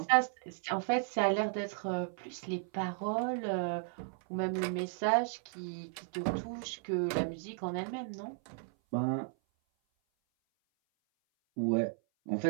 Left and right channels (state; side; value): silent; left; 55 dB below the other